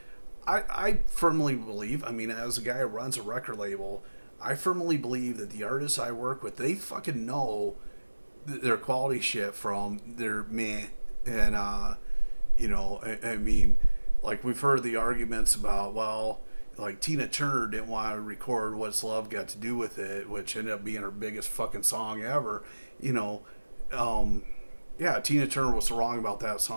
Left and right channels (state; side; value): inverted; both; correlation -1.00